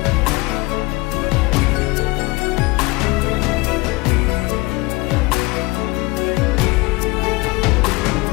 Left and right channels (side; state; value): right; quieter; 23.7 dB